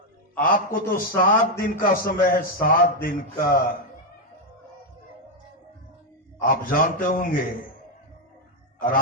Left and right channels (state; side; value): normal; both; correlation 0.03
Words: आपको तो 7 दिन का समय है, 7 दिन का। आप जानते होंगे